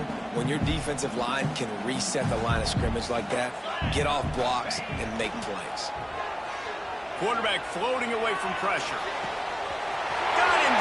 When your defensive line can reset the line of scrimmage like that, get off blocks and make plays. Quarterback floating away from pressure. Got him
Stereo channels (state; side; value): identical; both; correlation 1.00